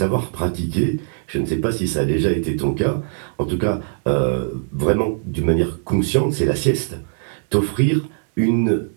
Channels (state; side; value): silent; left; 65 dB below the other